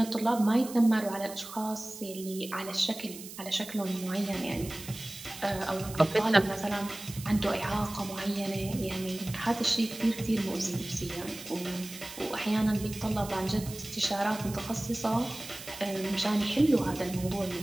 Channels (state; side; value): noise; right; hiss, 13 dB below the sound